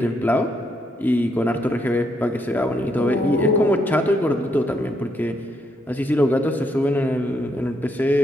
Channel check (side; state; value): both; normal; correlation 0.76